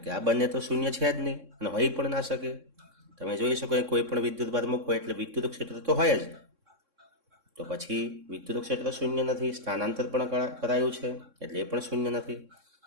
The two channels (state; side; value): late; left; 3.6 ms